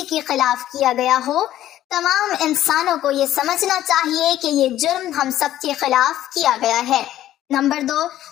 کے خلاف کیا گیا ہو، تمام انسانوں کو یہ سمجھنا چاہیے کہ یہ جرم ہم سب کے خلاف کیا گیا ہے۔ نمبر 2،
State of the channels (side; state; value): right; quieter; 13.0 dB